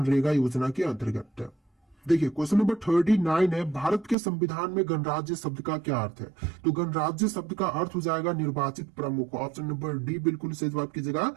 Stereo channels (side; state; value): left; drops out; at 4.2 s